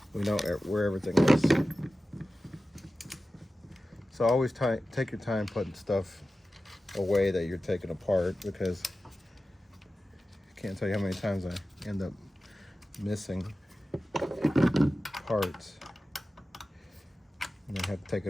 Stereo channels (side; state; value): both; normal; correlation 0.94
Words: we know where everything is. So always take your time putting stuff away that you're taking apart, because I can't tell you how many times I end up missing parts and then have to take it